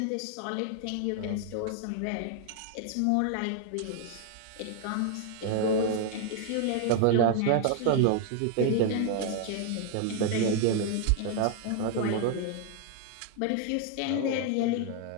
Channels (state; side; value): different; both; correlation 0.00